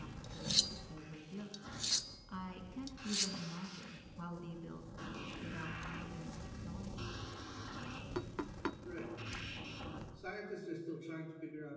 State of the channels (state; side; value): identical; both; correlation 1.00